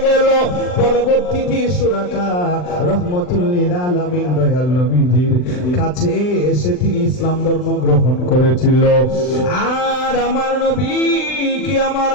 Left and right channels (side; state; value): right; late; 39 ms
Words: গেল। পরবর্তীতে সুরাকা রহমতুল লিল আলামিন দয়াল নবীজির কাছে এসে তিনি ইসলাম ধর্ম গ্রহণ করেছিল। আর আমার নবীকে আমার